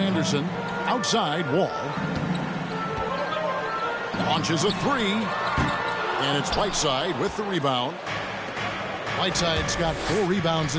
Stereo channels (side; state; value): both; identical; correlation 1.00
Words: outside, Wall. Launches a three. And it's Whiteside with the rebound. Whiteside's got 4 rebounds